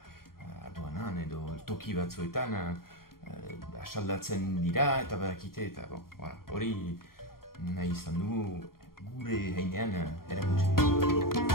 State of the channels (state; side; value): late; right; 0.92 ms